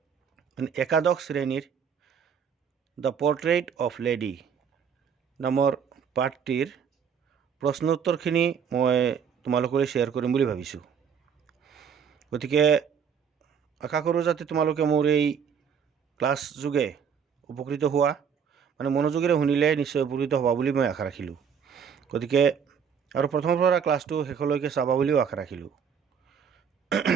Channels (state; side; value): quieter; left; 7.2 dB